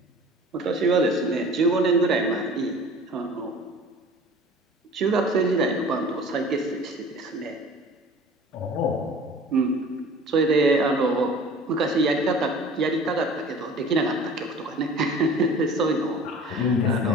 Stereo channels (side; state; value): both; normal; correlation 0.44